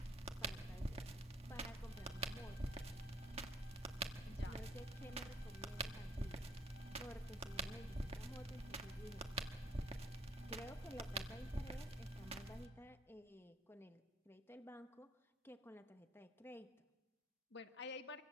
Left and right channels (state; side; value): normal; both; correlation 0.66